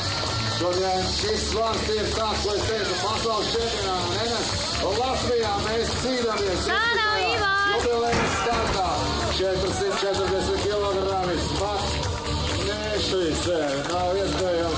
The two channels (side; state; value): both; identical; correlation 1.00